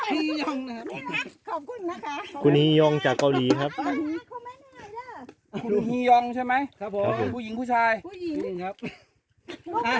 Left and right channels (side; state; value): both; identical; correlation 1.00